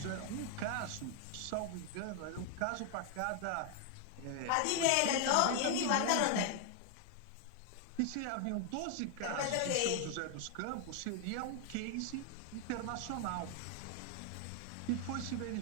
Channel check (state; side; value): different; both; correlation 0.00